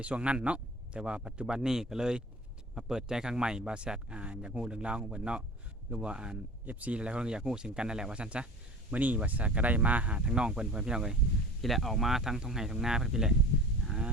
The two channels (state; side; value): normal; both; correlation 0.40